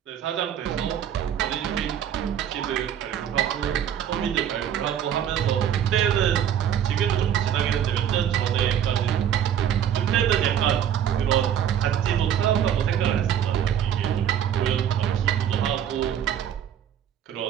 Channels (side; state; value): left; quieter; 9.5 dB